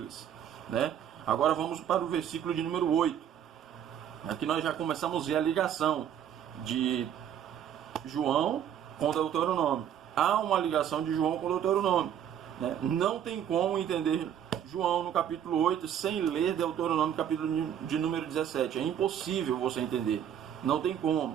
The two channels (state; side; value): quieter; left; 9.5 dB